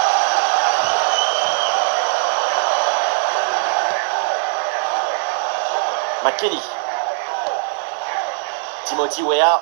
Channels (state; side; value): silent; left; 66 dB below the other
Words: McKennie. Timothy Weah.